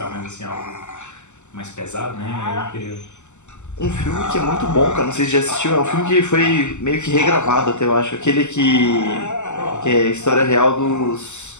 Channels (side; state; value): right; late; 0.83 ms